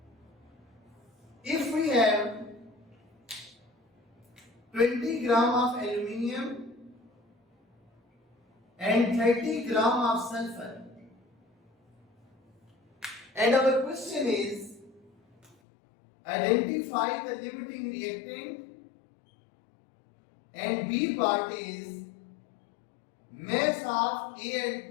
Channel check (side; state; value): right; drops out; at 15.6 s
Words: If we have 20 gram of aluminium and 30 gram of sulfur, and our question is identify the limiting reactant, and B part is mass of